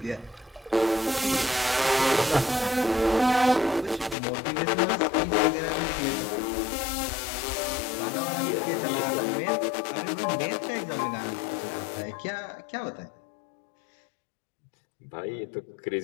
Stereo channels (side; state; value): right; drops out; at 4.2 s